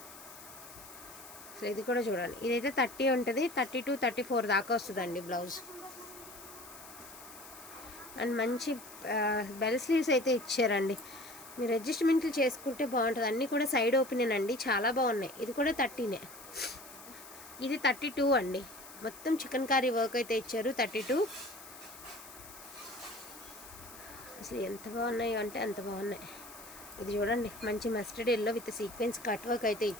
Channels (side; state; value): left; noise; hiss, 16 dB below the sound